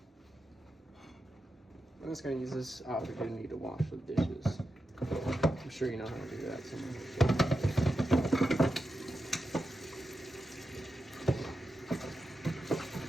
I'm just gonna use this opportunity to wash the dishes. I'm sure you know how to do that somewhere.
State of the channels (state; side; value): normal; both; correlation 0.89